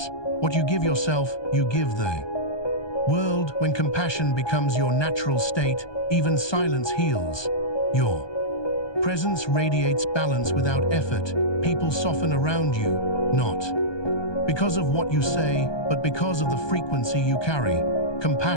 what you give yourself, you give the world. When compassion becomes your natural state, even silence heals. Your presence radiates balance without effort. People soften around you, not because of what you say, but because of the frequency you carry.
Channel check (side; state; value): right; late; 1.2 ms